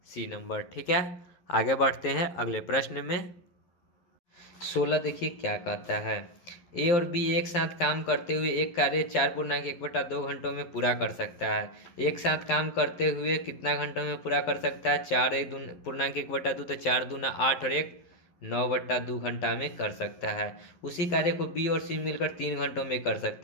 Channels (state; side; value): late; right; 11 ms